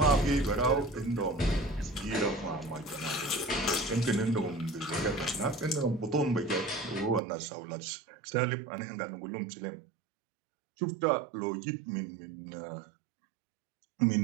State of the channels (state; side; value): drops out; left; at 7.2 s